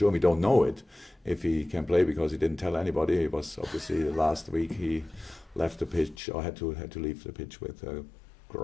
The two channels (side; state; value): right; drops out; at 6.2 s